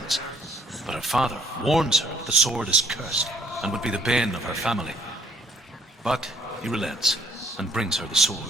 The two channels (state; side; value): normal; both; correlation 0.64